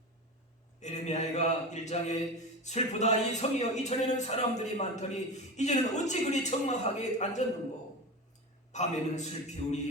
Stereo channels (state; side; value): normal; both; correlation 0.25